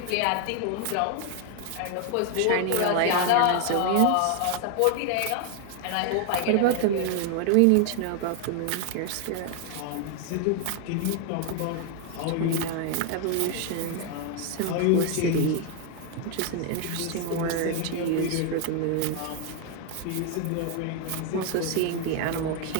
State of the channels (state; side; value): different; both; correlation 0.00